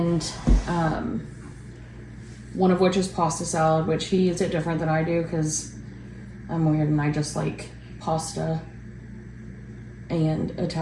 one of which is pasta salad, which he eats it different than I do because I'm weird and I just like pasta and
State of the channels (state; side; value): identical; both; correlation 1.00